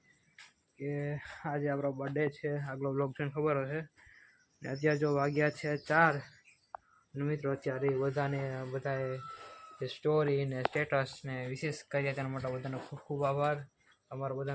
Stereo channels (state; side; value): identical; both; correlation 1.00